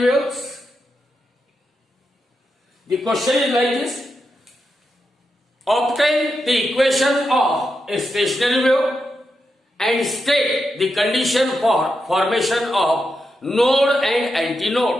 waves. The question is like this: obtain the equation of a stationary wave and state the condition for formation of node and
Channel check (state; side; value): normal; both; correlation 0.86